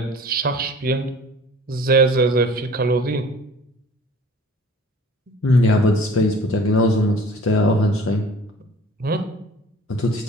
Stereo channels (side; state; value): both; normal; correlation 0.47